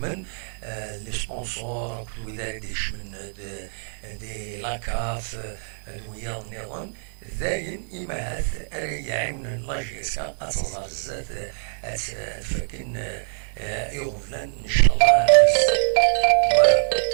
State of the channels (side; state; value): left; silent; digital silence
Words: لي سبونسور كل ذلك يشمل دي لاكاف دويا نيرون ذاين إما هاث يعاون لا جي اس كا أتصدر الزات تفكن يغفلن إن شاء الله فوالا